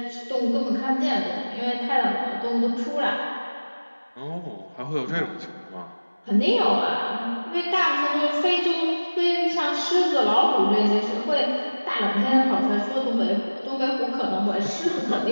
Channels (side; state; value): both; inverted; correlation -1.00